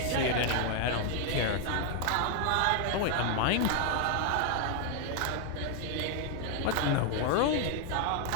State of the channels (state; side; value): different; both; correlation 0.00